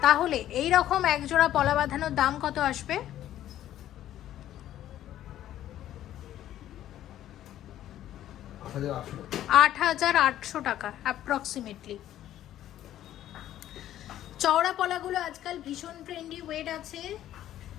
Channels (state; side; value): quieter; right; 12.4 dB